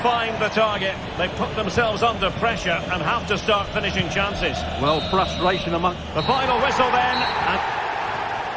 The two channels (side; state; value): both; identical; correlation 1.00